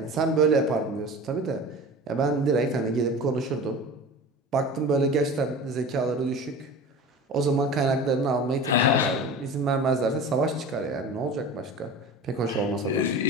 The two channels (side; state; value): both; normal; correlation 0.35